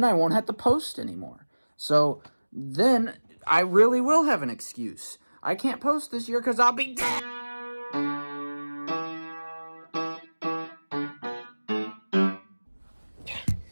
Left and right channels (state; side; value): inverted; both; correlation -1.00